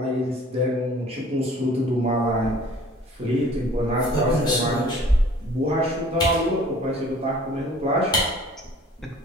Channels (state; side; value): normal; both; correlation 0.50